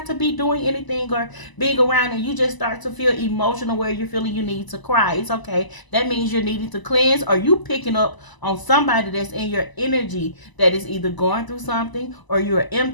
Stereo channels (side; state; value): right; late; 1.0 ms